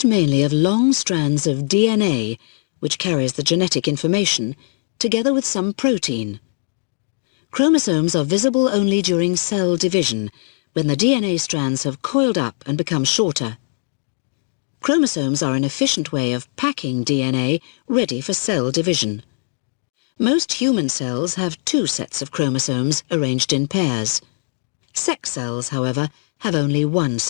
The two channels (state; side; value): silent; right; digital silence